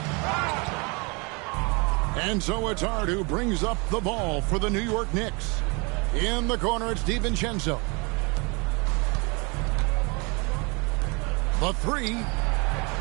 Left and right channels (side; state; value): left; quieter; 30.2 dB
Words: And so it's Hart who brings up the ball for the New York Knicks. In the corner, it's DiVincenzo. The three